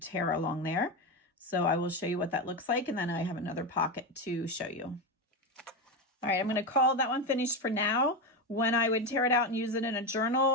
along there. So I will show you what that looks like, and then I have another pocket to show you. All right, I'm going to call that one finished for now. When I would tear it out and use it in a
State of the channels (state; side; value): normal; both; correlation 0.14